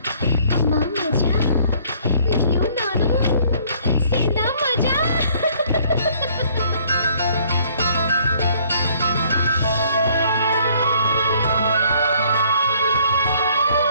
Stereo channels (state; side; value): inverted; both; correlation -0.60